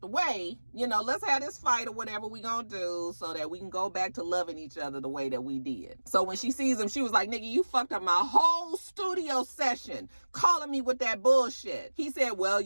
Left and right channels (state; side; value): inverted; both; correlation -1.00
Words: the way. You know, let's have this fight or whatever we gonna do so that we can go back to loving each other the way that we did. So when she sees him, she was like, nigga, you fucked up my whole studio session calling me with that bullshit. He said, well,